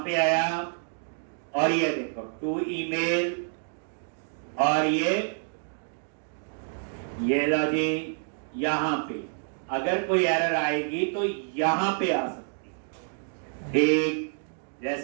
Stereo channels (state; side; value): silent; left; 59 dB below the other